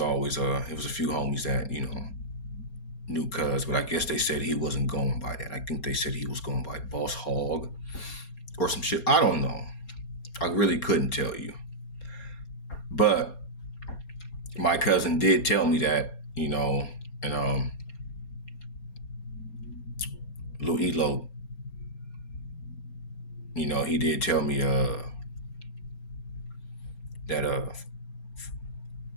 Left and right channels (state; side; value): late; right; 4.3 ms